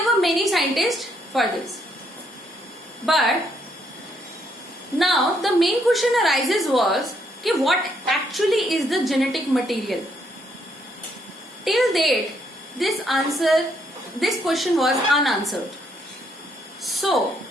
were many scientists for this. But now the main question arises was कि what actually is the genetic material? Till date, this question was unanswered. So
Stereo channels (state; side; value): normal; both; correlation 0.72